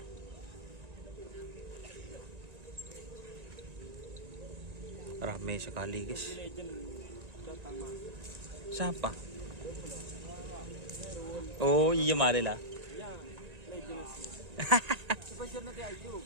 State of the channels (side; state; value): left; late; 1.9 ms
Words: Ramai sekali guys. Siapa? Oh iya mari lah.